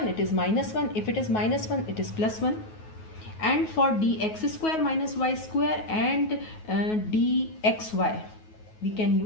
it is minus 1. If it is minus 1, it is plus 1. And for dx square minus y square and dxy, we can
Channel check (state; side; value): late; right; 9.4 ms